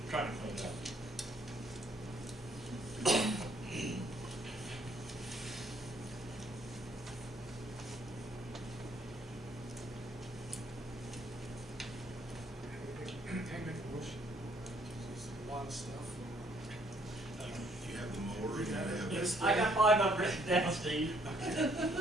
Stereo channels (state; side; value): normal; both; correlation 0.66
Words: I'm trying to clean it up. Hey, make a motion. There's a lot of stuff. You have the mower, you have this. I got 5 up written down, Steve.